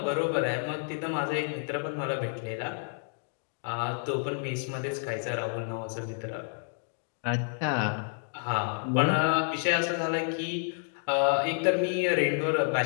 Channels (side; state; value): right; silent; 58 dB below the other